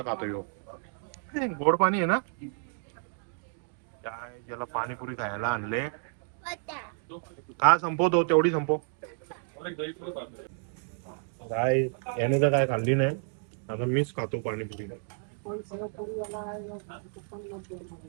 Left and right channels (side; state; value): left; silent; 55 dB below the other